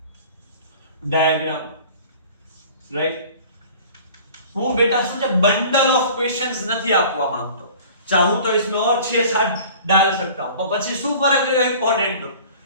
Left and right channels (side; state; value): both; inverted; correlation -0.45